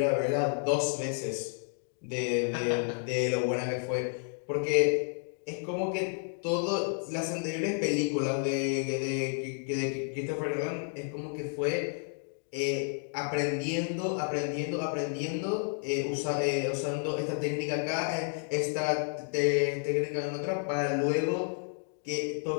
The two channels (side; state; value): right; silent; 57 dB below the other